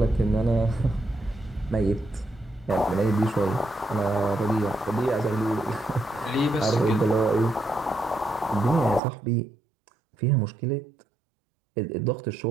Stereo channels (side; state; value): left; drops out; at 9.0 s